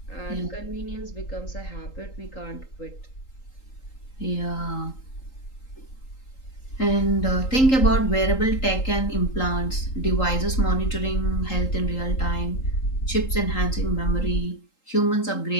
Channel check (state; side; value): late; right; 3.8 ms